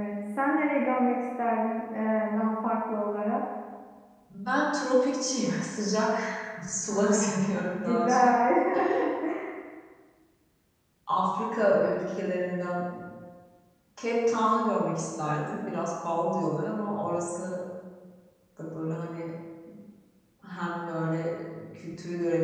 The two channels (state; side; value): identical; both; correlation 1.00